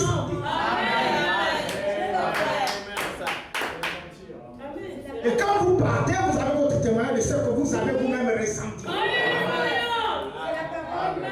Et quand vous partez, vous avez votre témoignage de ce que vous avez vous-même ressenti.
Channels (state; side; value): identical; both; correlation 1.00